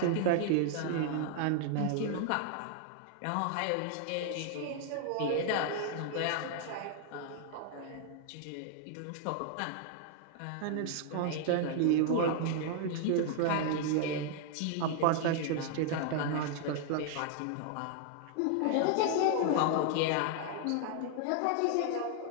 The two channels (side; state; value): both; different; correlation 0.00